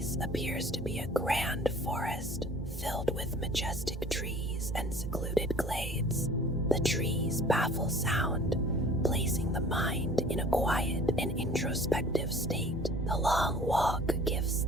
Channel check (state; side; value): normal; both; correlation 0.48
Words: appears to be a grand forest filled with majestic trees and secluded glades. The trees baffle sound, placing the mind in a quiet and introspective state. The long walk gives